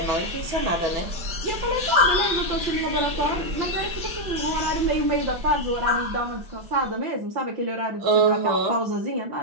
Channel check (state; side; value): late; left; 5.2 ms